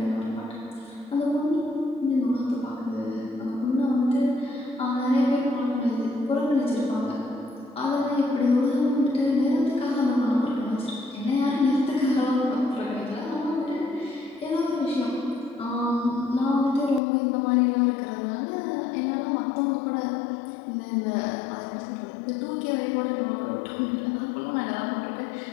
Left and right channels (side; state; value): right; drops out; at 17.0 s